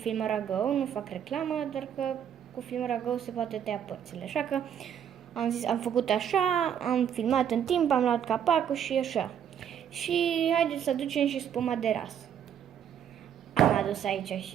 Filmora Go, nu fac reclamă, doar că cu Filmora Go se poate tăia părțile. Așa că am zis, am făcut așa, am filmat în timp, am luat capacul și așa. Și haideți să aducem și spuma de ras. Am adus aici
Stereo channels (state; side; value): quieter; left; 9.0 dB